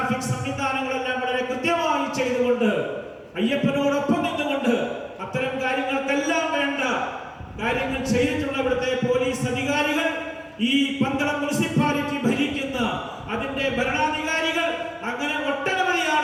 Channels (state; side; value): identical; both; correlation 1.00